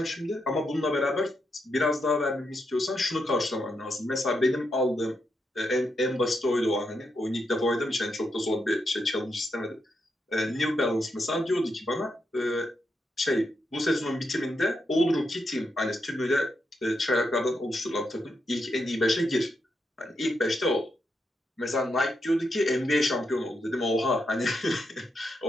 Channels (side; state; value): both; normal; correlation 0.83